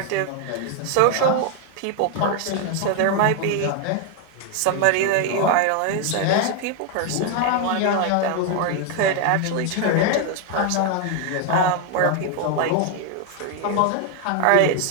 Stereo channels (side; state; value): both; different; correlation 0.01